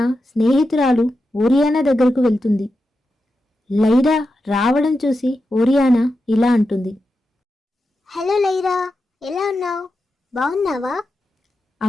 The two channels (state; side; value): normal; both; correlation 0.89